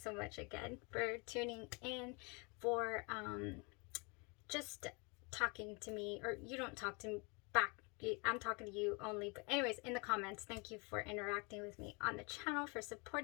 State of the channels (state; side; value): quieter; right; 31.1 dB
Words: so much again for tuning in, for just talking to me, or you don't talk to me back. I'm talking to you only. But anyways, in the comments, thank you for interacting with me on the channel, for